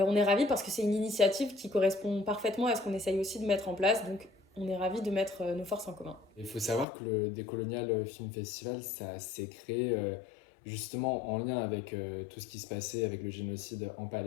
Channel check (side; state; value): right; drops out; at 6.9 s